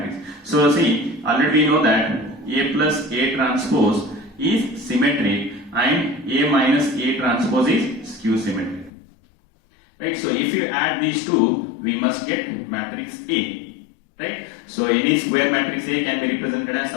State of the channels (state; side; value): drops out; right; at 8.9 s